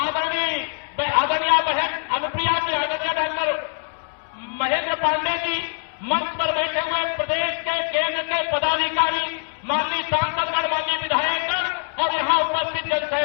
बहन अनुप्रिया जी, आदरणीय डॉक्टर महेंद्र पांडे जी, मंच पर बैठे हुए प्रदेश के केंद्र के पदाधिकारी, माननीय सांसदगण, माननीय विधायकगण और यहां उपस्थित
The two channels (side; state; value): right; silent; digital silence